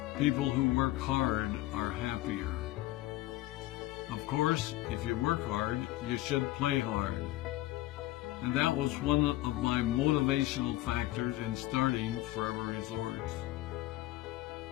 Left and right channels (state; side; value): quieter; right; 17.0 dB